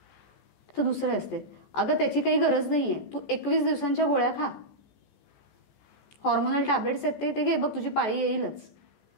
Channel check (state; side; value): late; right; 14 ms